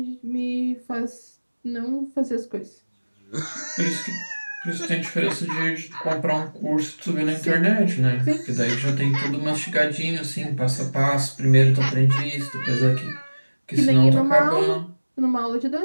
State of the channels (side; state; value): both; inverted; correlation -1.00